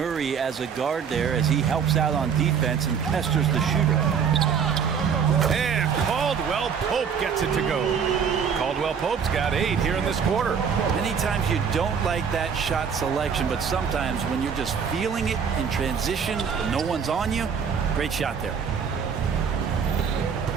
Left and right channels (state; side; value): quieter; left; 6.8 dB